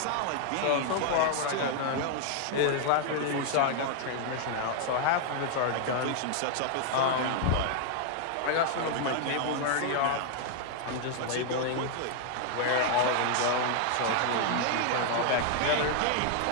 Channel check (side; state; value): both; different; correlation 0.00